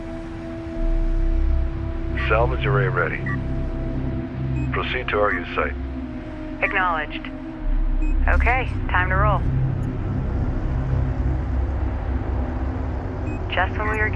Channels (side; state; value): both; identical; correlation 1.00